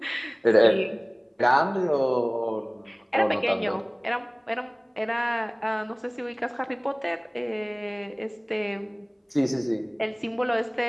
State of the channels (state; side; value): identical; both; correlation 1.00